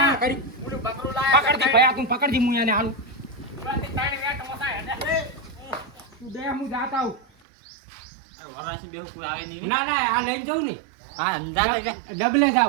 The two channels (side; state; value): left; drops out; at 7.2 s